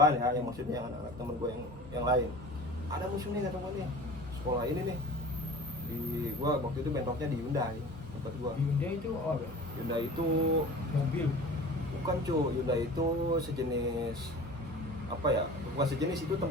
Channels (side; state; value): both; normal; correlation 0.39